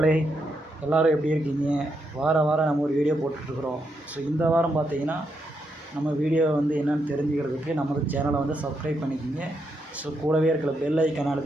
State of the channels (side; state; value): both; normal; correlation 0.81